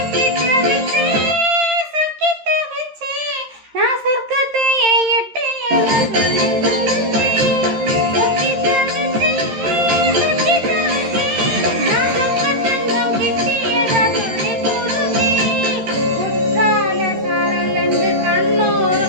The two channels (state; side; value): late; left; 13 ms